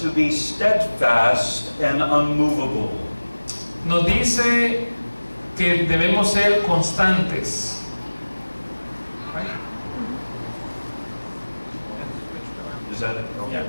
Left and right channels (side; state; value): both; inverted; correlation -1.00